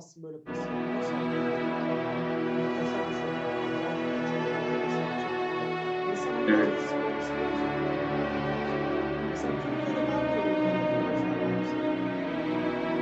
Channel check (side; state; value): both; identical; correlation 1.00